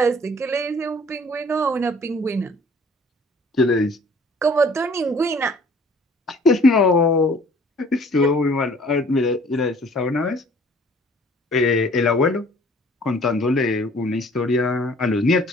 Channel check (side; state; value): both; normal; correlation 0.54